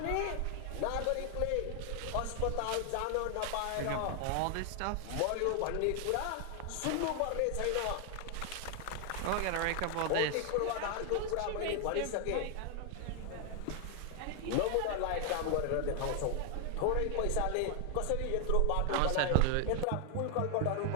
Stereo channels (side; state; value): both; different; correlation 0.00